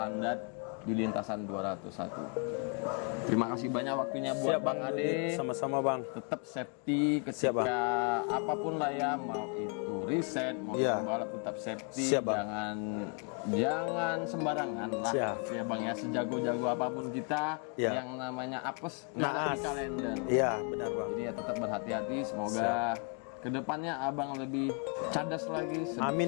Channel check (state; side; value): quieter; right; 37.8 dB